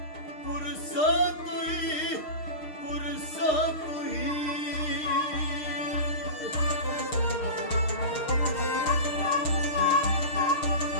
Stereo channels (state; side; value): late; right; 6.5 ms